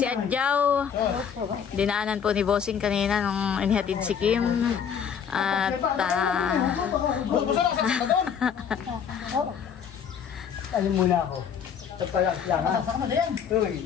Adjaw. Dinaanan po ni Bossing kanina nung inihatid si Kim. At Alam muna ako. Pagpalakas lang ha. Uy,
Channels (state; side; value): quieter; right; 7.6 dB